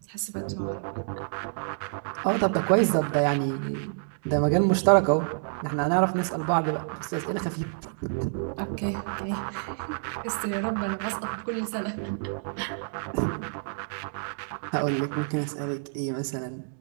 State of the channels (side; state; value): left; silent; digital silence